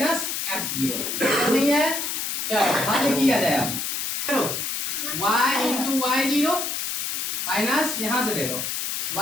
x0 नहीं है। चलो हल किया जाए, अब चलो y इंटू y0 माइनस यहाँ से देखो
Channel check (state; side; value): noise; left; hiss, 2 dB below the sound